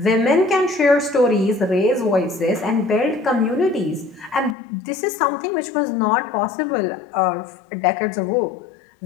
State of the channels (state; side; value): drops out; right; at 4.5 s